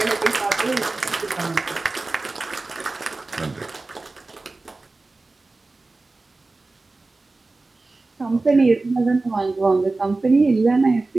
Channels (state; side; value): quieter; left; 3.4 dB